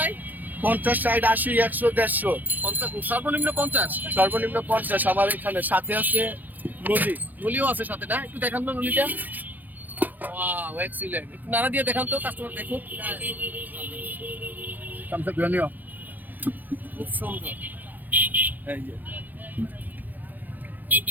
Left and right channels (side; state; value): left; late; 0.084 ms